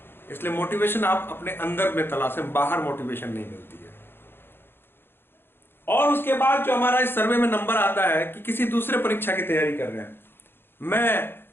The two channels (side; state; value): right; late; 0.10 ms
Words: इसलिए मोटिवेशन आप अपने अंदर में तलाशें, बाहर मोटिवेशन नहीं मिलती है। और उसके बाद जो हमारा इस सर्वे में नंबर आता है कि किसी दूसरे परीक्षा की तैयारी कर रहे हैं, मैं